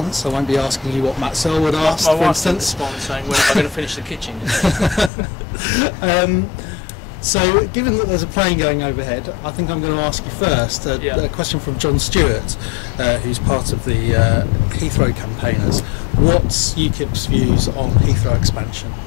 I won't be asking you what Matt Searle would ask, for instance. Saying, when am I going to finish the kitchen? So, given that there's a plane going overhead, I think I'm going to ask you first a question from John Stewart, who's part of the Heathrow campaigners. What's UKIP's views on Heathrow expansion?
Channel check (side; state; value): right; drops out; at 5.1 s